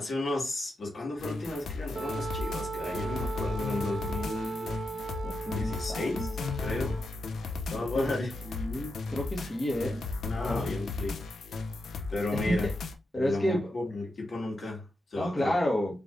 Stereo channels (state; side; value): normal; both; correlation 0.86